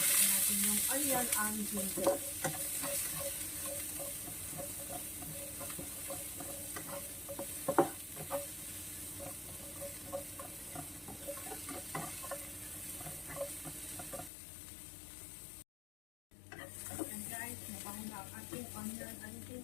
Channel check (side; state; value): right; drops out; at 14.3 s